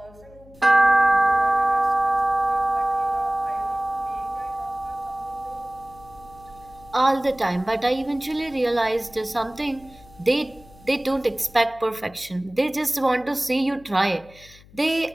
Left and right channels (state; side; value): noise; left; hum, 24 dB below the sound